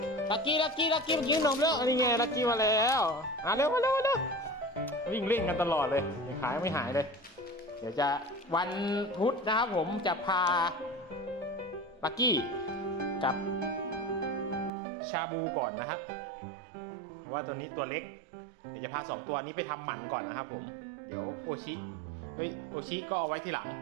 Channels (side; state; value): left; drops out; at 14.7 s